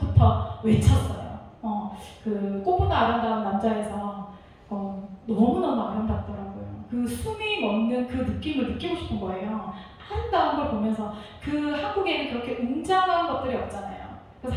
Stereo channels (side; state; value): both; identical; correlation 1.00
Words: 외쳤어요. 그 꽃보다 아름다운 남자에서 너무너무 아름답더라고요. 그 숨이 멎는 그 느낌을 느끼고 싶은 거예요. 아름다운 걸 보면서. 그 한국에는 그렇게 웅장한 것들이 없잖아요.